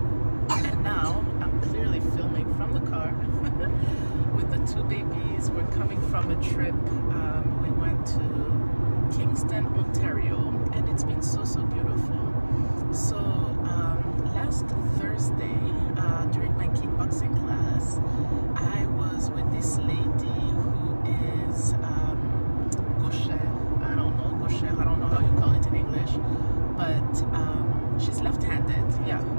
And now I'm clearly filming from the car with the two babies. We're coming from a trip. We went to Kingston, Ontario, and it's been so beautiful. So last Thursday, during my kickboxing class, I was with this lady who is gaucher. I don't know how you call it in English, but she's left-handed.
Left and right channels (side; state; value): both; inverted; correlation -1.00